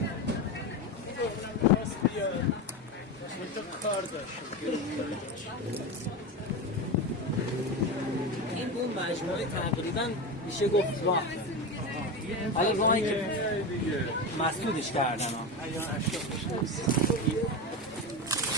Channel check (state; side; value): normal; both; correlation 0.20